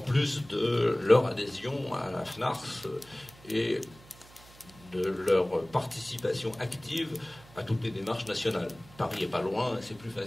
de leur adhésion à la FNARS et de leur participation active à toutes les démarches nationales. Paris n'est pas loin, c'est plus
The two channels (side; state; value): right; noise; hum, 23 dB below the sound